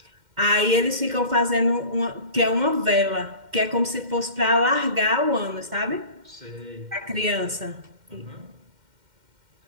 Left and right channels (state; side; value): late; left; 2.1 ms